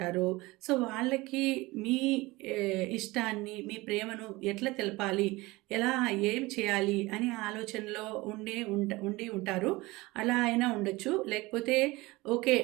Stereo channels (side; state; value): left; quieter; 21.4 dB